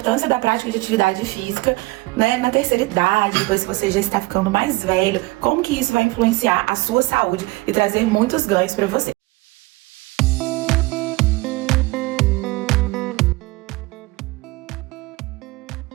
da prática de atividade física, né, na terceira idade, depois que você já está ficando mais velho, como que isso vai influenciar a sua saúde e trazer muitos ganhos para você.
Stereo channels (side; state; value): left; quieter; 21.9 dB